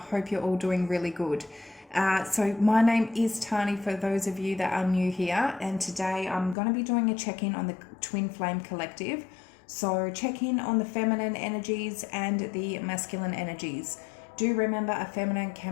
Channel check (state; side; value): drops out; right; at 6.6 s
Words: hope you're all doing really good. So, my name is Tani for those of you that are new here, and today I'm going to be doing a check in on the Twin Flame Collective. So, check in on the feminine energies and the masculine energies. Do remember a feminine